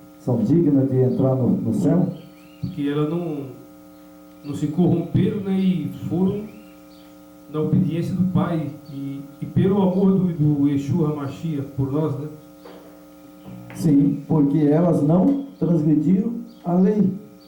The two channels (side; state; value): both; identical; correlation 1.00